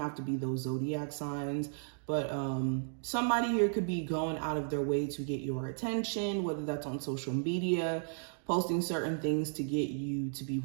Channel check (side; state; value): left; silent; digital silence